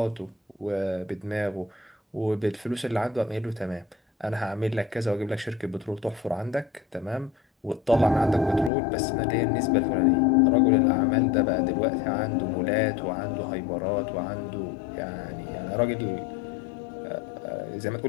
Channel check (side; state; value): right; drops out; at 8.7 s